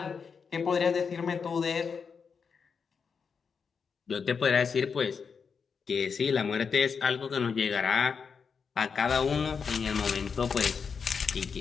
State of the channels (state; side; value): quieter; right; 5.9 dB